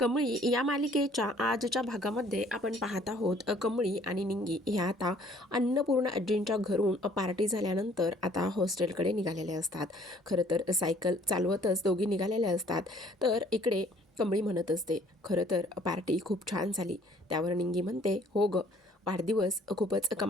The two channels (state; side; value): normal; both; correlation 0.58